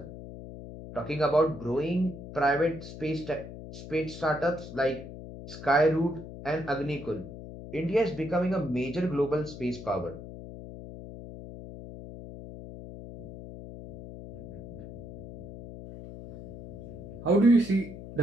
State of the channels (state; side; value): noise; left; hum, 12 dB below the sound